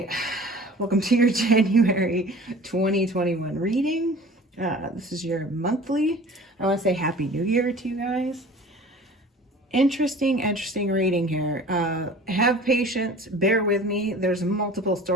Welcome to your January 2021 reading. This is your monthly. I want to say Happy New Year to you guys. Interesting reading here. Have patience, bear with me. There's multiple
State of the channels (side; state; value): both; normal; correlation 0.43